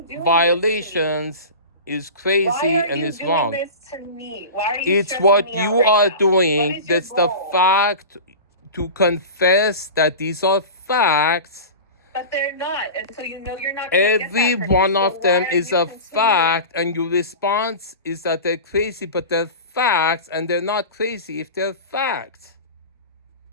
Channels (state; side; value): inverted; both; correlation -0.31